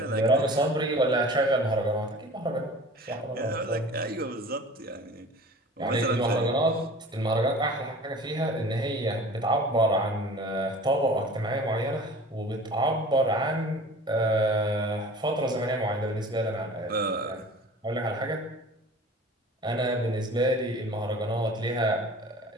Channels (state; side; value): normal; both; correlation 0.42